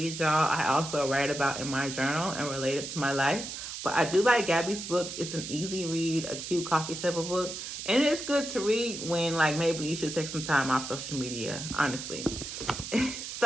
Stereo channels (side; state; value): right; noise; hiss, 8 dB below the sound